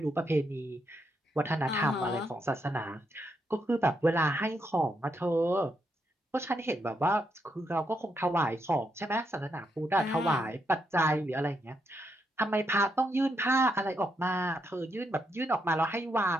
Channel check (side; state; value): both; normal; correlation 0.80